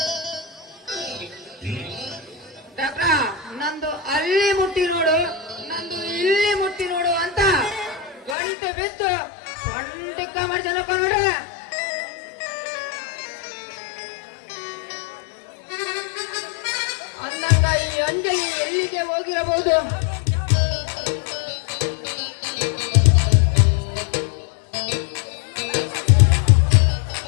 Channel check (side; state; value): right; drops out; at 8.3 s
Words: ಡಾಕ್ಟ್ರ ನಂದು ಅಲ್ಲಿ ಮುಟ್ಟಿ ನೋಡು ನಂದು ಇಲ್ಲಿ ಮುಟ್ಟಿ ನೋಡು ಅಂತ ಗಂಟೆ ಬಿದ್ದು ಸೊಂಟಿಕ್ಕ ಮಾಡ್ಸನಪ್ಪ ನೋಡ್ರಿ. ಅಂದಾಗ ಈ ಅಂಜಲಿ ಎಲ್ಲಿಗೆ ಹೋಗಿರಬಹುದು?